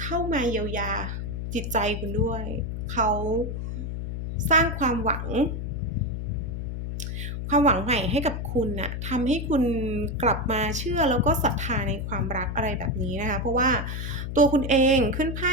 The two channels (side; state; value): left; noise; hum, 4 dB below the sound